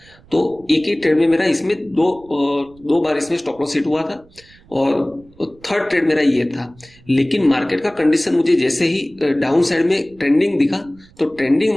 तो एक ही ट्रेड में मेरा इसमें दो बार इसमें स्टॉप लॉस हिट हुआ था और थर्ड ट्रेड मेरा ये था। लेकिन मार्केट का कंडीशन मुझे जैसे ही डाउन साइड में ट्रेंडिंग दिखा, तो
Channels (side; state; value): right; noise; rumble, 27 dB below the sound